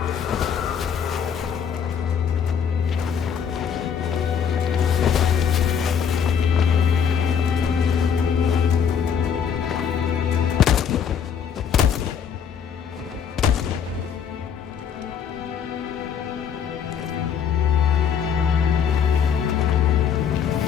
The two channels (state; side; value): quieter; right; 7.5 dB